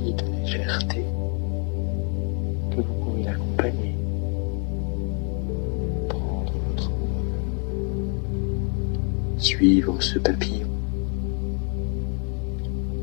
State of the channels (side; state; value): right; quieter; 39.4 dB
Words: de légèreté que vous pouvez l'accompagner. Suivre ce papillon,